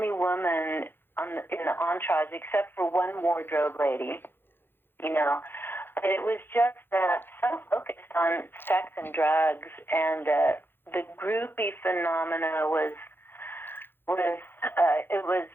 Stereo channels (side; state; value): right; late; 0.10 ms